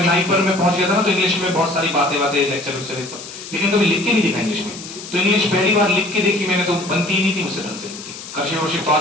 नाइपर में पहुंच गया था ना, तो इंग्लिश में बहुत सारी बातें लेक्चर सब, लेकिन कभी लिख के नहीं देखा इंग्लिश में। तो इंग्लिश पहली बार लिख के देखी मैंने, तो बनती ही नहीं थी मुझसे ढंग से, लिखती कर्सिव वर्सिव तो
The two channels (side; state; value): left; noise; hiss, 13 dB below the sound